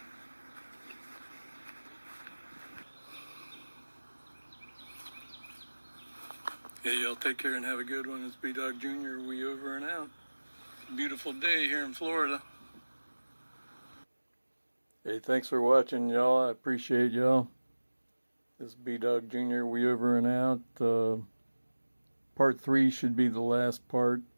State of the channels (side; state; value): both; inverted; correlation -1.00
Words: Hey, y'all take care and have a good one. It's Bdog Jr. We over and out. Beautiful day here in Florida. Hey, thanks for watching, y'all. I appreciate y'all. This is Bdog Jr. We over and out. Part 3 should be the last part,